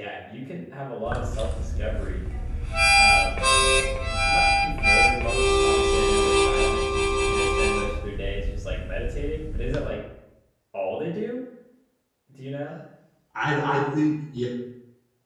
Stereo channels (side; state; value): both; identical; correlation 1.00